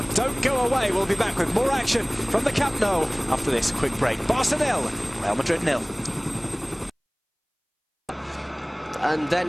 Don't go away. We'll be back with more action from the Camp Nou after this quick break. Barca 0, Real Madrid 0. And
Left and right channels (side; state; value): both; identical; correlation 1.00